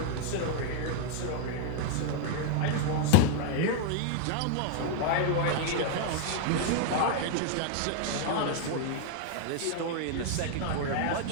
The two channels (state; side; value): different; both; correlation 0.00